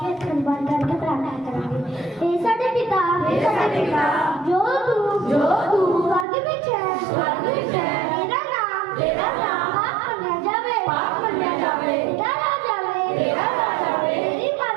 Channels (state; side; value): drops out; left; at 6.2 s